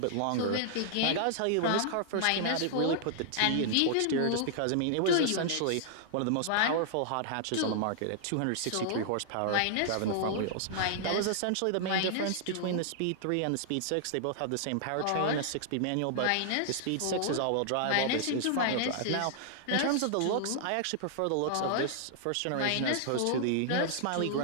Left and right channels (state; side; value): different; both; correlation -0.01